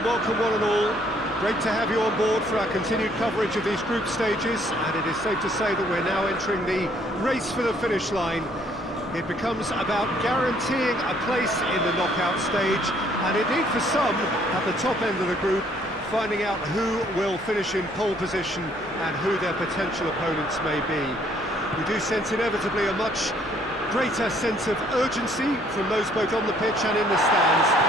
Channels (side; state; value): both; normal; correlation 0.64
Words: welcome one and all. Great to have you on board for our continued coverage of these group stages, and it is safe to say that we're now entering the race for the finish line. It becomes about guaranteeing a place in the knockout stage, and indeed for some, at the top end of the group, finding out who will finish in pole position and who their potential opponents may be. We do sense inevitably a much greater sense of urgency from those both on the pitch and in the stands,